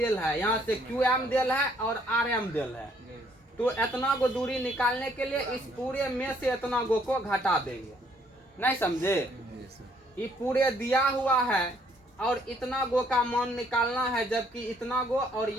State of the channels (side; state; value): both; normal; correlation 0.66